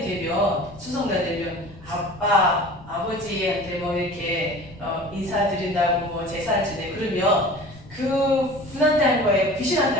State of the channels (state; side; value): noise; left; rumble, 20 dB below the sound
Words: 되면 추석날 되면 아버지한테 뭐 이렇게 인사드린다고 뭐 제사를 지내 그러면 그 분한테 하는 거예요? 귀신한테